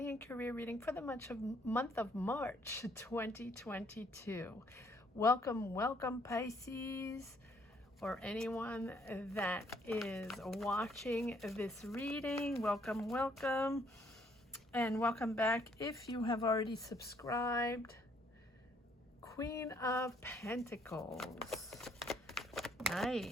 and career reading for the month of March 2022. Welcome Pisces, or anyone that is watching this reading. Welcome, and welcome back if you have already subscribed. Queen of Pentacles.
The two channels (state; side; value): normal; both; correlation 0.67